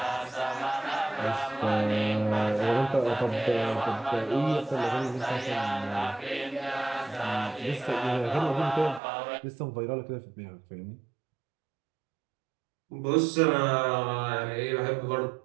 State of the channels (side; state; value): left; drops out; at 9.0 s